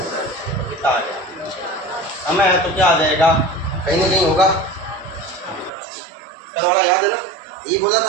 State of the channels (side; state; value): left; drops out; at 5.7 s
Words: कितना आ गया, समय है तो क्या आ जाएगा, कहीं ना कहीं होगा, कल वाला याद है ना, ये बोला